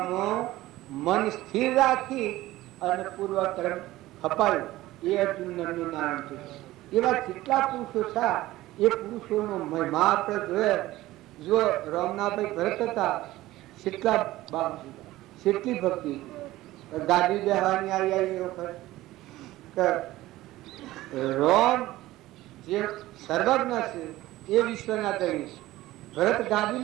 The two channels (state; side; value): quieter; left; 16.8 dB